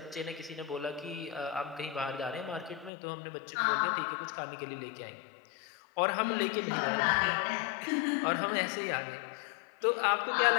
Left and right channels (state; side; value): drops out; right; at 2.9 s